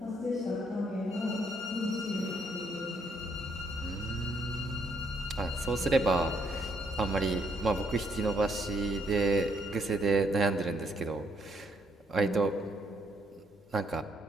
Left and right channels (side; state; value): both; normal; correlation 0.71